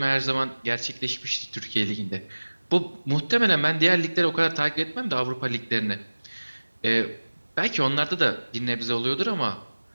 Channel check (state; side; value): inverted; both; correlation -1.00